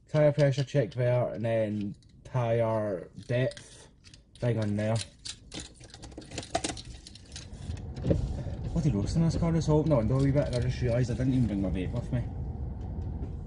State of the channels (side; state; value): both; identical; correlation 1.00